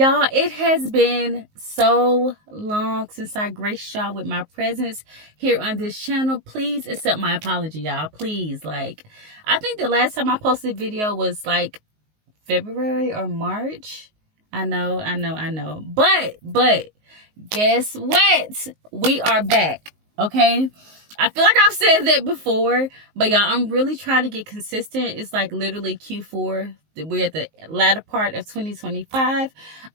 it has been so long since I graced y'all with my presence here on this channel. Please accept my apology, y'all. Please. Like, I think the last time I posted a video was like February or March. I know. But guess what? We are back. Okay? I feel like I've said that before, but y'all, I'm really trying to get consistent. It's like literally Q4. We're at the latter part of 2025.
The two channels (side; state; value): left; late; 19 ms